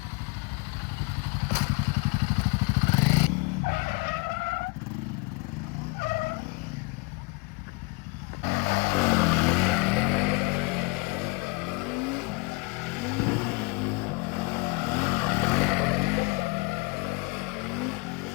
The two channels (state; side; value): quieter; right; 28.2 dB